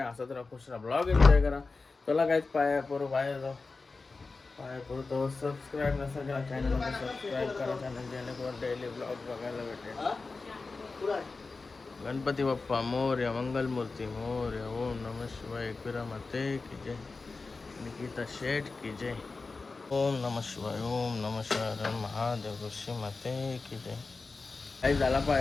असंच राहा, खुश राहा, ब्लॉग एन्जॉय करा. चला गाईज पाया पडू, बाहेर जाऊ. पाया पडू तो सबस्क्राईब नसेल केला चॅनलला सबस्क्राईब करा चॅनल, जेणेकरून डेली ब्लॉग बघायला भेटेल. गणपती बाप्पा मोरया, मंगलमूर्ती मोरया, ओम नमः शिवाय, एकविरा माते की जय, निकिता शेठ की जय, ओम नमः शिवाय, ओम नमः शिवाय, महादेव ऋषी माते की जय. काही झाला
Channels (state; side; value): quieter; right; 4.0 dB